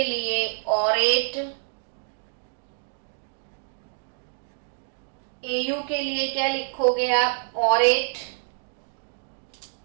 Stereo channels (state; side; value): silent; left; digital silence